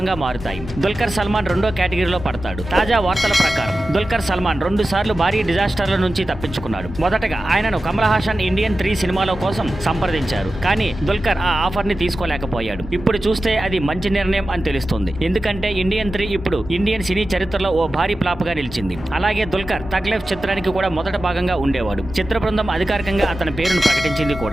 మారుతాయి. దుల్కర్ సల్మాన్ రెండో కేటగిరీలో పడతాడు. తాజా వార్తల ప్రకారం దుల్కర్ సల్మాన్ 2 సార్లు భారీ డిజాస్టర్ల నుంచి తప్పించుకున్నాడు. మొదటగా ఆయనను కమల్ హాసన్ ఇండియన్ 3 సినిమాల కోసం సంప్రదించారు, కానీ దుల్కర్ ఆ ఆఫర్ ని తీసుకోలేకపోయాడు. ఇప్పుడు చూస్తే అది మంచి నిర్ణయం అని తెలుస్తుంది, ఎందుకంటే ఇండియన్ 3 ఇప్పుడు ఇండియన్ సినీ చరిత్రలో ఓ భారీ ఫ్లాప్ గా నిలిచింది. అలాగే దుల్కర్ తగ్ లైఫ్ చిత్రానికి కూడా మొదట భాగంగా ఉండేవాడు. చిత్ర బృందం అధికారికంగా అతని పేరును ప్రకటించింది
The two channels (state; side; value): normal; both; correlation 0.93